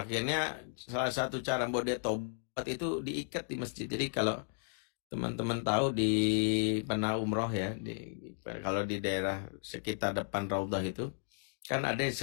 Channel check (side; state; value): right; silent; digital silence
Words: salah satu cara buat dia tobat itu diikat di masjid. Jadi kalau teman-teman tahu di pernah umroh ya, kalau di daerah sekitar depan Raudhah itu kan ada yang